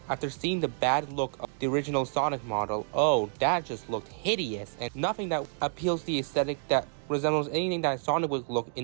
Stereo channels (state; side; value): silent; left; 58 dB below the other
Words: after seeing the bad look of the original Sonic model. Oh, that just looked hideous, and nothing that appeals to the aesthetic that resembles anything that Sonic would look